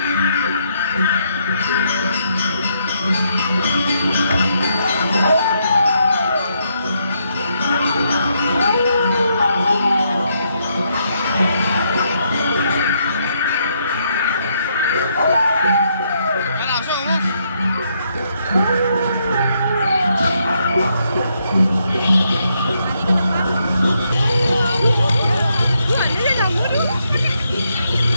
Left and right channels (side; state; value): both; inverted; correlation -0.76